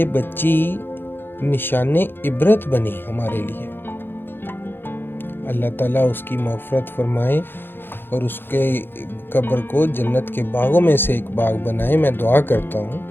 बच्ची निशाने इबरत बनी हमारे लिए। अल्लाह ताला उसकी मग़फ़िरत फरमाए और उसके कब्र को जन्नत के बागों में से एक बाग बनाए, मैं दुआ करता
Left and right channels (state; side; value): late; right; 0.10 ms